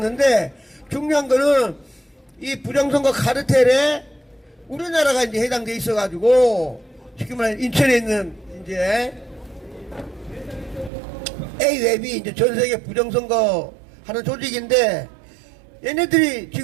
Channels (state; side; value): drops out; left; at 10.9 s